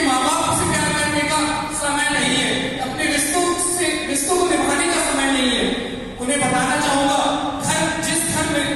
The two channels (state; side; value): identical; both; correlation 1.00